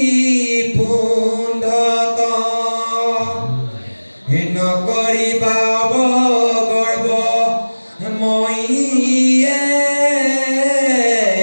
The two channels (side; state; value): both; inverted; correlation -1.00